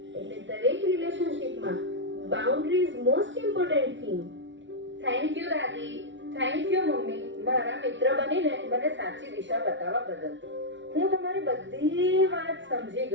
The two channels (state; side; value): late; left; 0.54 ms